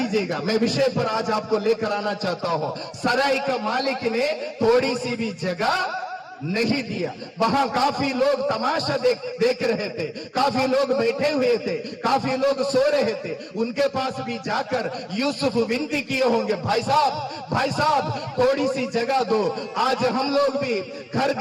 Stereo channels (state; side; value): identical; both; correlation 1.00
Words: मैं विषय पर आज आपको लेकर आना चाहता हूं। सराय का मालिक ने थोड़ी सी भी जगह नहीं दिया। वहां काफी लोग तमाशा देख रहे थे, काफी लोग बैठे हुए थे, काफी लोग सो रहे थे। उनके पास भी जाकर यूसुफ विनती किए होंगे, भाई साहब थोड़ी सी जगह दो। आज हम लोग भी घर